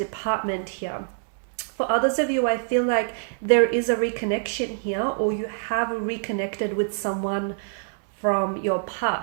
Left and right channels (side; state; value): left; silent; digital silence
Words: here. For others of you, I feel like there is a reconnection here, or you have reconnected with someone from your